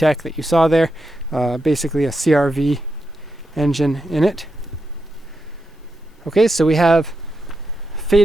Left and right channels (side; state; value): both; normal; correlation 0.86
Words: that you saw there. Basically a CRV engine in it. Okay, so we have